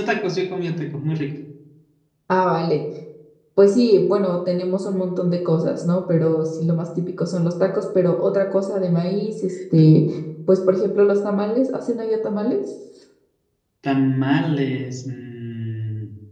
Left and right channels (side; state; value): both; identical; correlation 1.00